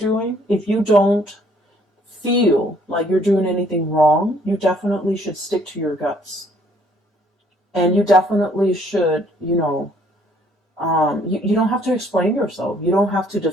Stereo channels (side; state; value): both; normal; correlation 0.63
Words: if you don't feel like you're doing anything wrong, you definitely should stick to your guts. And you definitely should, you know, you don't have to explain yourself. You don't have to